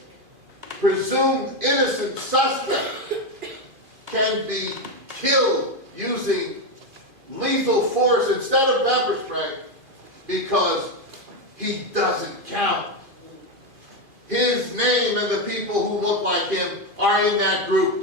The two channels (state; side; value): late; left; 2.5 ms